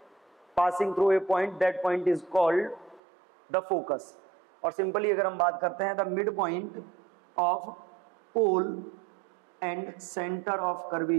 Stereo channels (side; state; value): left; drops out; at 3.0 s